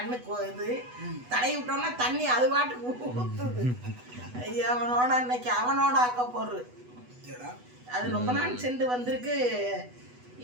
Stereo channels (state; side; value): late; left; 8.1 ms